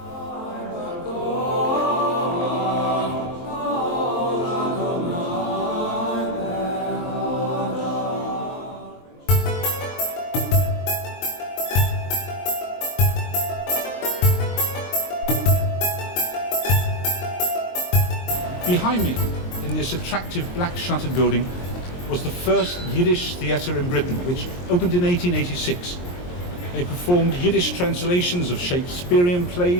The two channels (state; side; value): late; right; 23 ms